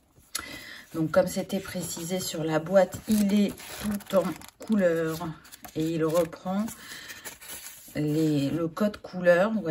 Donc comme c'était précisé sur la boîte, il est tout en couleur et il reprend le code couleur, vous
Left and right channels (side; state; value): both; identical; correlation 1.00